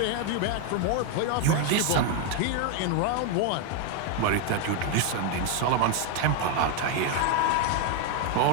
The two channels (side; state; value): both; different; correlation 0.01